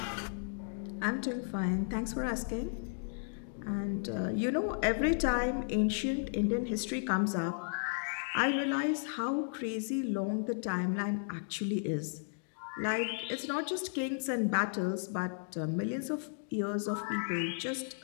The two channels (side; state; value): right; silent; digital silence